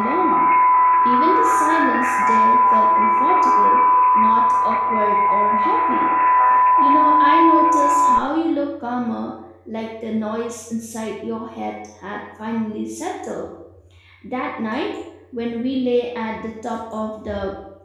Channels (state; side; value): identical; both; correlation 1.00